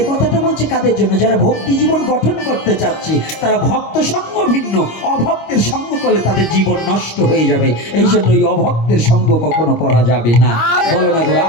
কথাটা বলছে কাদের জন্য? যারা ভক্তি জীবন গঠন করতে চাচ্ছে, তারা ভক্ত সঙ্গ ভিন্ন, অভক্তের সঙ্গ করলে তাদের জীবন নষ্ট হয়ে যাবে। এই জন্য এই অভক্তের সঙ্গ কখনো করা যাবে না। বলো না গো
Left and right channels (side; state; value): right; late; 25 ms